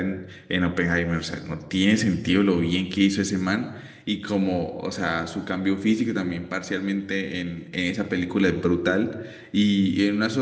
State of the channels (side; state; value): both; identical; correlation 1.00